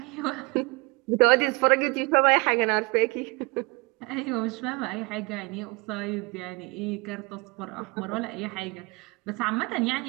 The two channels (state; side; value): quieter; left; 26.8 dB